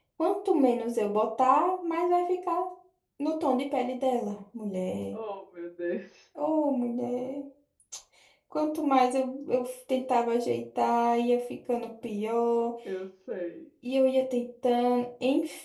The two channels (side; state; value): both; identical; correlation 1.00